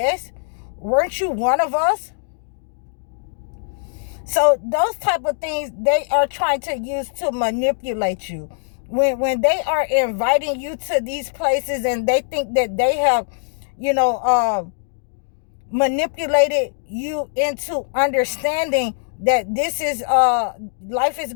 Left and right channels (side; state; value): right; silent; digital silence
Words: Weren't you one of us? So those type of things they are trying to use to manipulate you. When they are inviting you to these places and they think that they have, manipulated you into understanding that this is life is